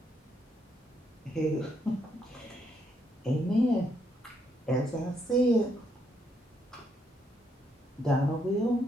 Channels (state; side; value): normal; both; correlation 0.75